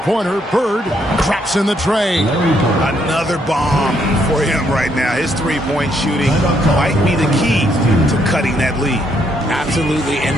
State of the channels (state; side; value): normal; both; correlation 0.73